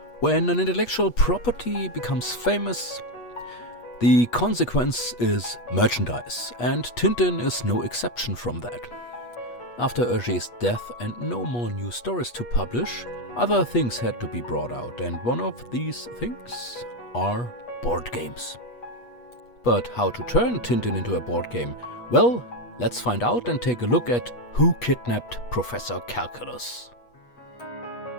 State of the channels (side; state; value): right; late; 8.3 ms